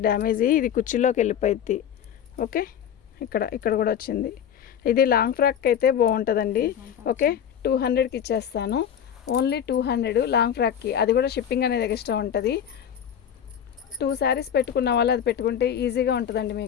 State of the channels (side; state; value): right; quieter; 8.9 dB